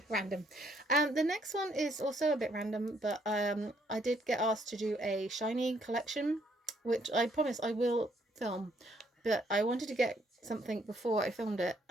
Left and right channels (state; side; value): normal; both; correlation 0.69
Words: random. The next one is also a bit random, but I did get asked to do a shiny collection, which I promise I will film, but I wanted to get something before I filmed it,